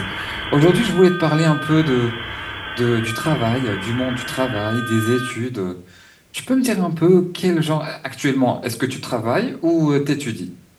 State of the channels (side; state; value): both; identical; correlation 1.00